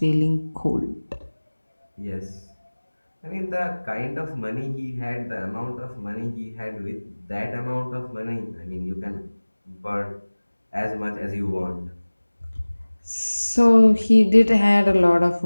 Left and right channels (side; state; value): both; inverted; correlation -1.00